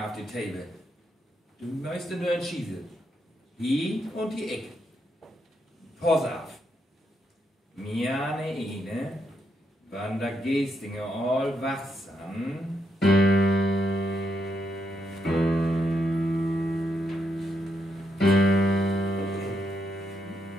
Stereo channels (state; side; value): normal; both; correlation 0.80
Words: auf die Table. Du möchtest nur entschießen. Hier und die Eck. Pass auf. Mir eine, wann der Gestinger all wachsam.